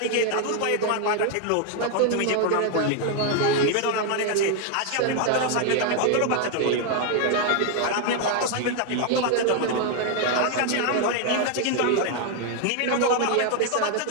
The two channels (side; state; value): both; different; correlation 0.01